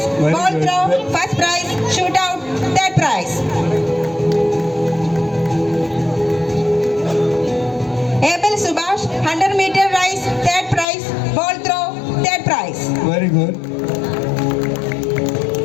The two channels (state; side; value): drops out; right; at 10.9 s